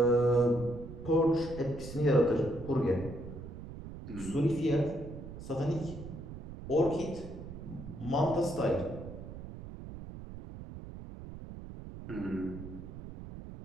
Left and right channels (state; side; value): noise; right; rumble, 11 dB below the sound